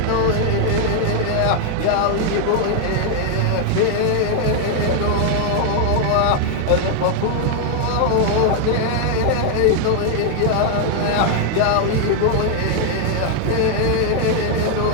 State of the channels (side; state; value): both; different; correlation 0.00